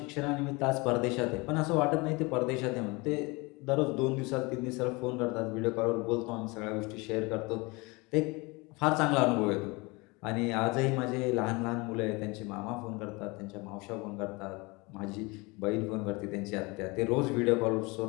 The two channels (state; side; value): quieter; right; 26.0 dB